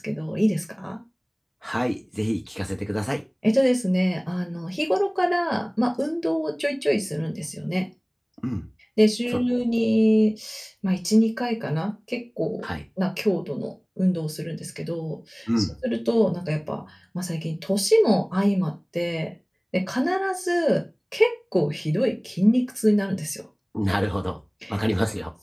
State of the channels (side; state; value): both; identical; correlation 1.00